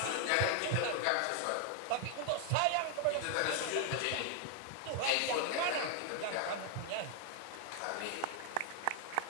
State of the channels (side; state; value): both; different; correlation 0.00